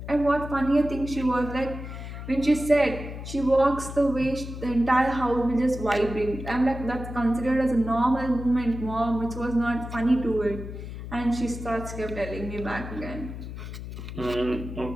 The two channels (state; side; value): noise; left; hum, 9 dB below the sound